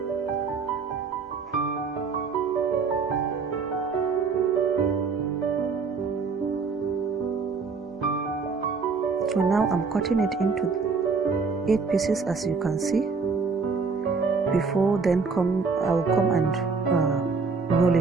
So now I'm cutting it into 8 pieces, as you can see. Before then I will come and roll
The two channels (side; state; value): left; quieter; 4.9 dB